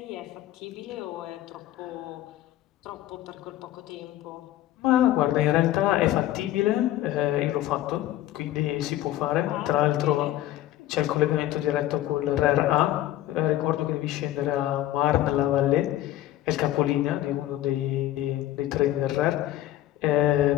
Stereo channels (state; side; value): quieter; right; 13.9 dB